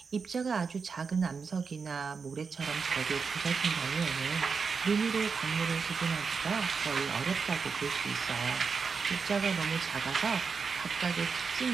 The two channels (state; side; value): quieter; left; 5.3 dB